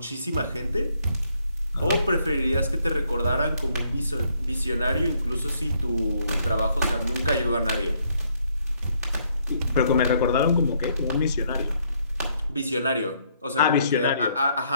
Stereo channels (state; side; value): inverted; both; correlation -0.70